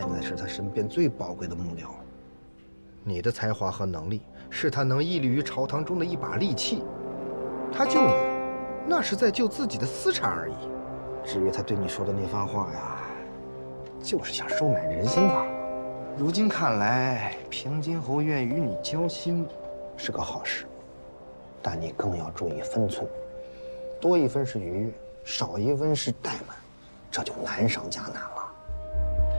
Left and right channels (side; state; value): both; inverted; correlation -1.00